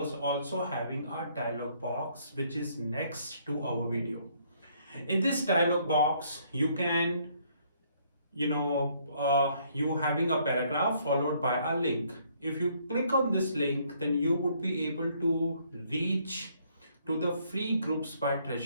also having a dialog box which is next to our video. In this dialog box, you can, you having a paragraph followed by a link. If you click on this link, then you would be able to reach to the free groups by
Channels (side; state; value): both; inverted; correlation -0.67